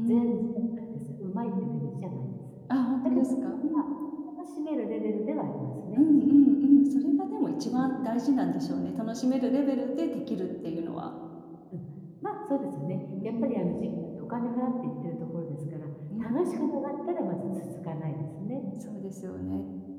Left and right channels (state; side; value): identical; both; correlation 1.00